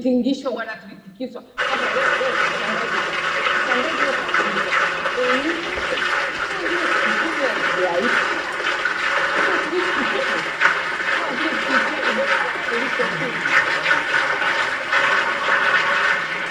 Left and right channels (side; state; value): both; identical; correlation 1.00